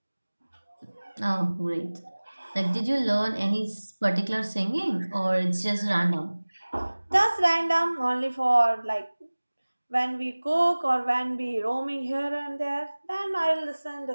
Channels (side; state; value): both; inverted; correlation -1.00